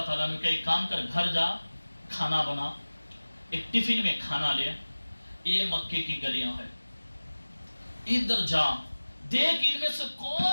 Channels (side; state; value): both; inverted; correlation -1.00